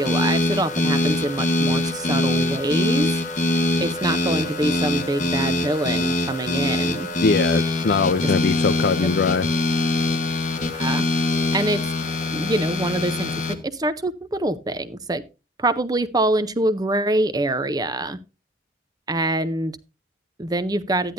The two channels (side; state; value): both; normal; correlation 0.52